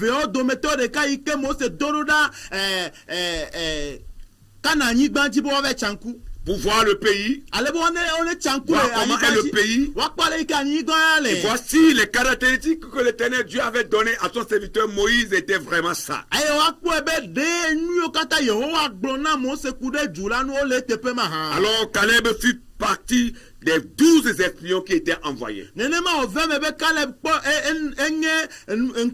Pour voir le pays, voir comment est le pays, et voici les caractéristiques que l'Éternel Dieu avait données à son serviteur Moïse étaient vraiment ça. Alors Caleb fut partie des 12 espions qui étaient envoyés. Mais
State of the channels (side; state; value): both; identical; correlation 1.00